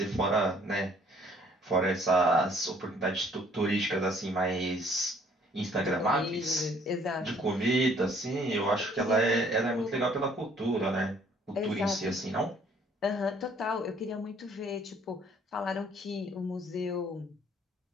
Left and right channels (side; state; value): both; normal; correlation 0.60